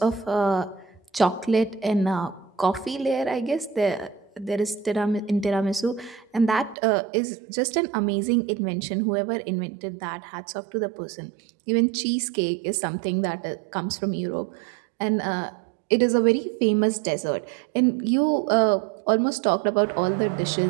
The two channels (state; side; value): drops out; left; at 6.8 s